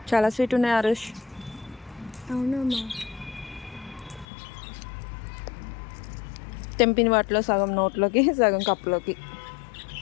చాలా స్వీట్ ఉన్నాయి ఆరుష్. అవునమ్మా. తెంపిన వాటిలో సగం నోట్లోకి, సగం కప్పులోకి.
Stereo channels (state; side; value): drops out; right; at 4.2 s